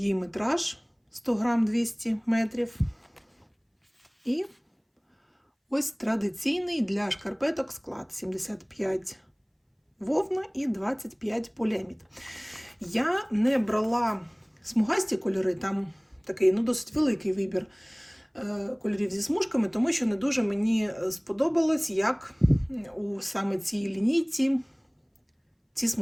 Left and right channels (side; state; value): both; identical; correlation 1.00